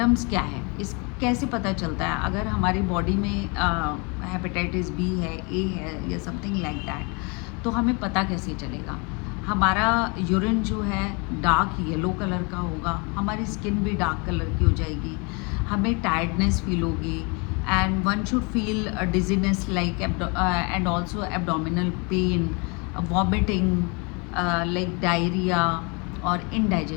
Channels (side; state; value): right; quieter; 31.4 dB